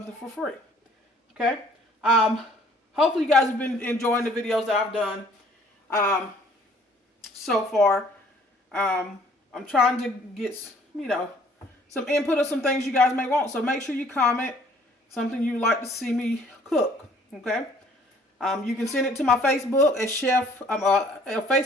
for free. Okay, hopefully you guys have been enjoying the videos that I've done so far. I'm trying to get, you know, some input of some things you guys may want. So make sure you comment something you'd like to see me cook. Okay. You can send it to my Facebook at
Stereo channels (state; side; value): normal; both; correlation 0.58